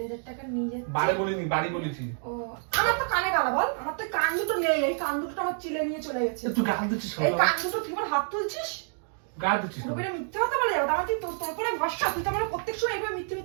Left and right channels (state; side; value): silent; left; 59 dB below the other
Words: টাকা নিয়ে যাচ্ছি। বাড়ি বলিনি, বাড়ি বলেছি। ও, আমার তো কানে গালা বল, আমার তো কান দুটো নেই, এই কান দুটো আমার চিলে নিয়ে চলে গেছে। তুই গাল দিচ্ছিস এই কান দুটো তুই আমার হাত তুলছিস, গাল দিচ্ছিস পুরোপুরি মিথ্যা কথা বলে যাবো। আমার তোর করে ভরসা, তুই তো আমার প্রত্যেক সময় এইভাবে